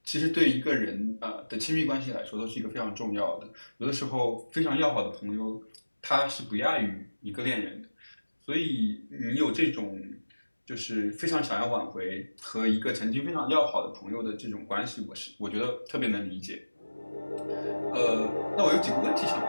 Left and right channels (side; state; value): both; inverted; correlation -1.00